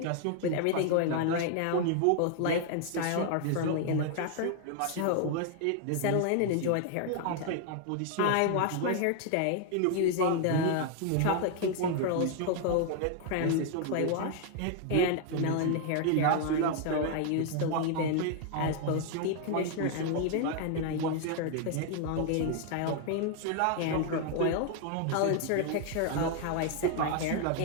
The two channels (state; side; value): different; both; correlation 0.00